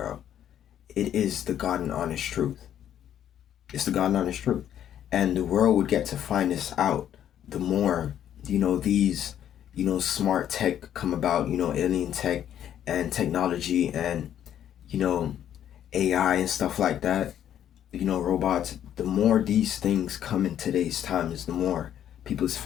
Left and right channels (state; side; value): quieter; right; 10.4 dB